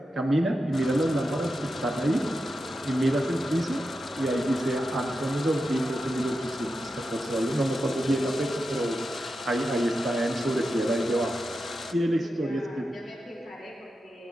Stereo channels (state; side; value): normal; both; correlation 0.89